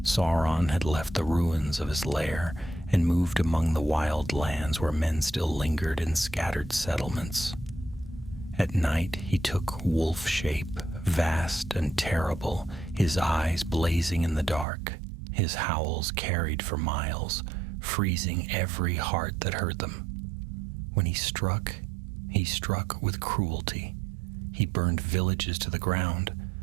Sauron had left the ruins of his lair and moved among the wild lands where men still lingered in scattered settlements. At night he took wolf shape, vast and terrible, his eyes blazing in the dark. His howls carried for miles, freezing every heart that heard them. When he struck with cruelty. He burned villages to the ground,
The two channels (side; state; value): left; drops out; at 14.7 s